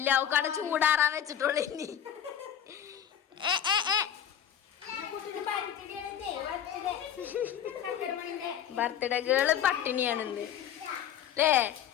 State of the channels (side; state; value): right; quieter; 9.6 dB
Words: അവക്കവിടെ ചൂടാറാൻ വെച്ചിട്ടുള്ളൂ. ഇനി ബർത്ത്ഡേ ഗേള് പട്ടിണിയാണെന്ന് അല്ലേ